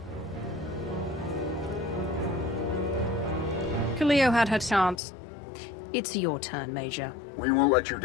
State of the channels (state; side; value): drops out; right; at 5.0 s